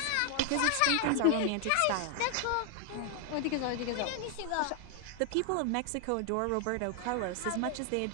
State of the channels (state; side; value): different; both; correlation 0.00